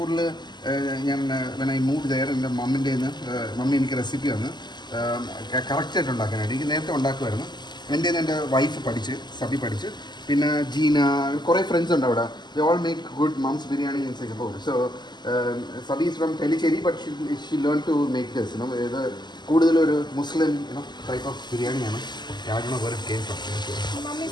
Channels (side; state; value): right; late; 0.21 ms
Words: when I moved there, എൻ്റെ മമ്മി എനിക്ക് റെസിപ്പി തന്ന് കറക്റ്റായിട്ട് ഉണ്ടാക്കാനായിട്ട്. എനിക്ക് നേരത്തെ ഉണ്ടാക്കുമായിരുന്നു. എൻ്റെ എൻ്റെ വൈഫ് സബി പഠിച്ച്, പിന്നെ ജീന, കുറേ ഫ്രണ്ട്സ് ഉണ്ട് അവിടെ. They all make good mom's biryani in Singapore. So Sabi is from Tellicherry, but she learned to make this. ഇത് കൂടുതലൊരു മുസ്ലിം type of ബിരിയാണിയാണ്. I don't know where it came from.